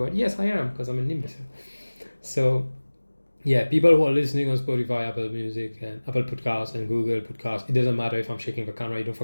Yes, I am, because I'm an imbecile. So, yeah, people who are listening on Spotify, Apple Music, and Apple Podcasts, and Google Podcasts, it doesn't matter if I'm shaking the camera, you don't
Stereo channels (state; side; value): inverted; both; correlation -1.00